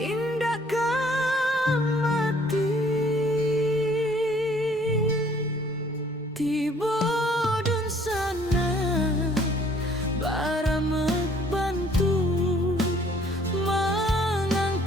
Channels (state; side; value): normal; both; correlation 0.59